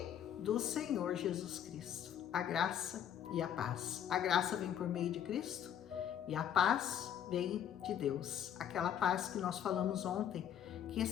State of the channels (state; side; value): quieter; right; 9.5 dB